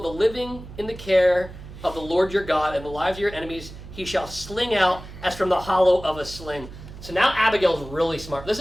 the living in the care of the Lord your God, and the lives of your enemies he shall sling out as from the hollow of a sling. So now Abigail's really smart. This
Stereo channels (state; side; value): noise; right; hum, 14 dB below the sound